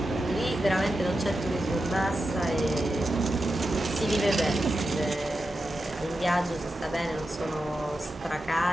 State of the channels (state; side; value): normal; both; correlation 0.90